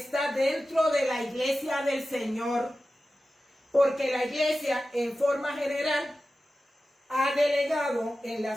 dentro de la iglesia del Señor, porque la iglesia en forma general ha delegado en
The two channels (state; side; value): normal; both; correlation 0.94